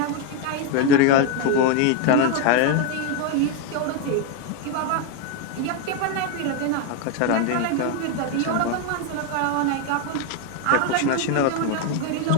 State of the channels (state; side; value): different; both; correlation 0.01